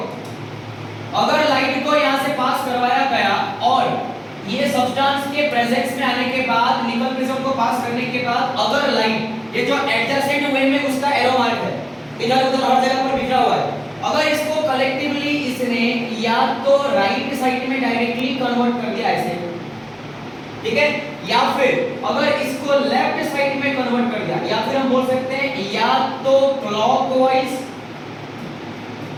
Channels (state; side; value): identical; both; correlation 1.00